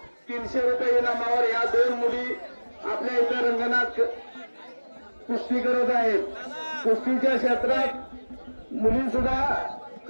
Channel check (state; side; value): inverted; both; correlation -1.00